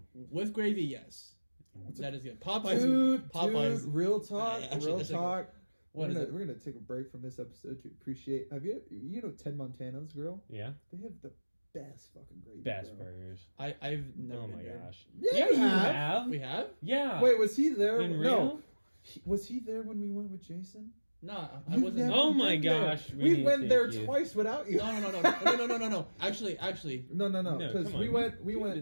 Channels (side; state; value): both; inverted; correlation -1.00